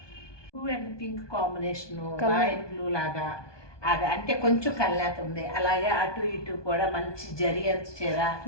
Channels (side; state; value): right; late; 1.2 ms